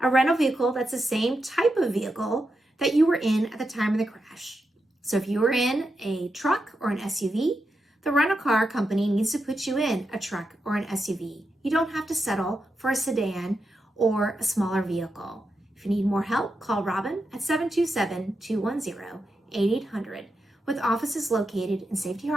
rental vehicle that's the same type of vehicle that you were in at the time of the crash. So if you were in a truck or an SUV, the rental car company needs to put you in a truck or an SUV. You don't have to settle for a sedan or a smaller vehicle. If you need more help, call Robin at 727-210-8800 with offices located in Safety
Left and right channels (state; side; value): normal; both; correlation 0.87